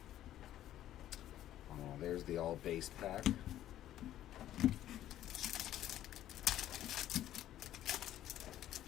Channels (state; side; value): quieter; right; 12.5 dB